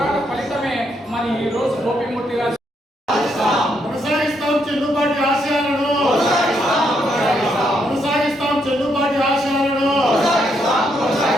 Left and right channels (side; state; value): both; normal; correlation 0.76